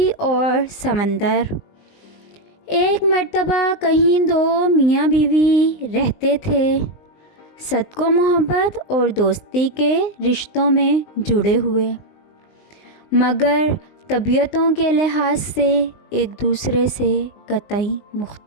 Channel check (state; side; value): late; right; 19 ms